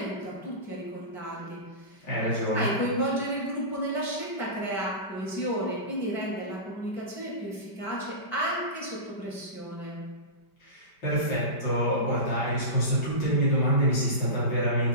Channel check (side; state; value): right; late; 5.1 ms